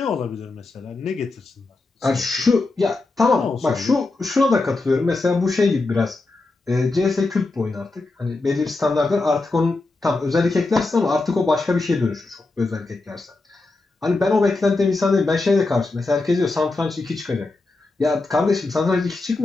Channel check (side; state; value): right; quieter; 3.4 dB